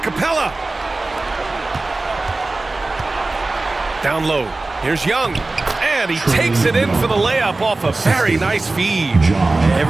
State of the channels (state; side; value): quieter; left; 3.2 dB